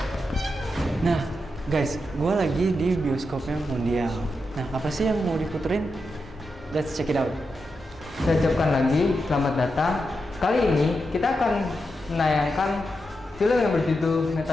Nah, guys, gue lagi di bioskopnya Mondial. Nah, apa sih yang mau diputerin? Let's check it out. Saya ucapkan lagi selamat datang. Kali ini kita akan menayangkan film yang berjudul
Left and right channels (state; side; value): normal; both; correlation 0.87